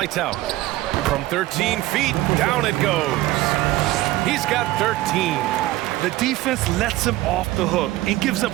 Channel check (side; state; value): left; quieter; 16.9 dB